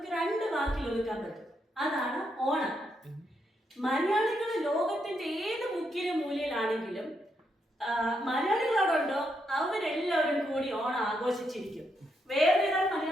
2 വാക്കിൽ ഒതുക്കാൻ പറ്റും. അതാണ് ഓണം. മലയാളികൾ ലോകത്തിന്റെ ഏത് മുക്കിലും മൂലയിലാണെങ്കിലും മലയാളികളോടുണ്ടോ അവരെല്ലാവരും കൂടി Onam ആഘോഷിച്ചിരിക്കും. Where there are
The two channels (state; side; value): normal; both; correlation 0.79